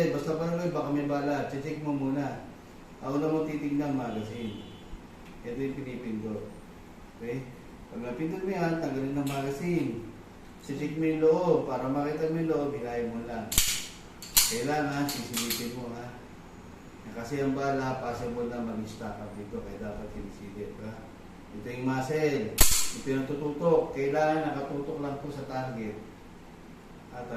Basta parang baka may bala. Check mo muna. Ako na mo titignan magazine. Ito yung pinipindot. Okay? Pag napindot mo yan, tanggalin ng magazine. Check mo yung loob. Para makita mo yung loob, hilahin mo lang. Kailangan, sisilipin mo ha. Kasi ang bala, possible na mag-stack up dito. Kaya dapat sinisilip ha. Ito yung muzzle. Ito yung tututok. Kailangan nakatutok lang po sa target.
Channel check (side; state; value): both; identical; correlation 1.00